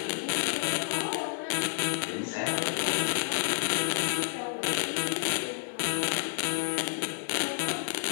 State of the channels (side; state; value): right; silent; 58 dB below the other